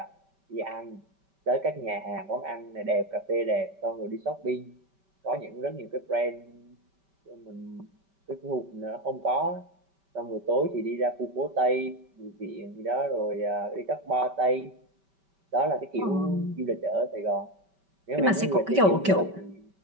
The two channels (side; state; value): left; late; 5.2 ms